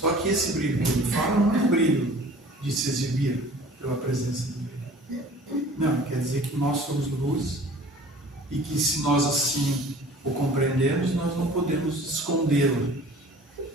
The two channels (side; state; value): both; normal; correlation 0.47